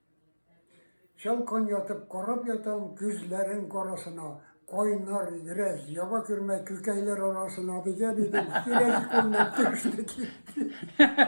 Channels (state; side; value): inverted; both; correlation -1.00